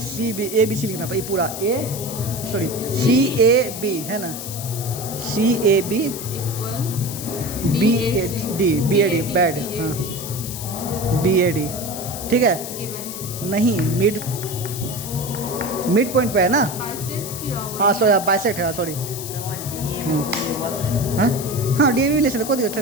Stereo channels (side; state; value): left; noise; hiss, 8 dB below the sound